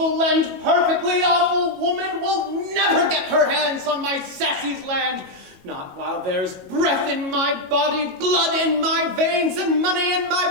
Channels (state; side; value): late; left; 22 ms